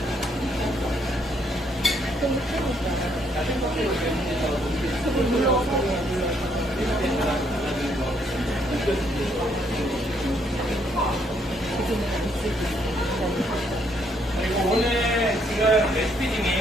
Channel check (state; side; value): normal; both; correlation 0.71